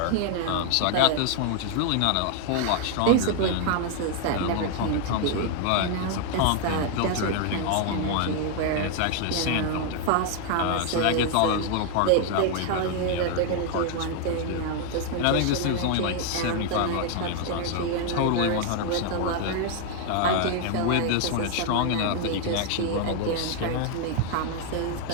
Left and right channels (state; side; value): different; both; correlation 0.00